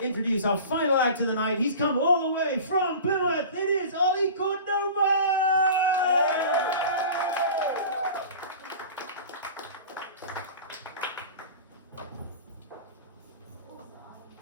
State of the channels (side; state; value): both; inverted; correlation -0.37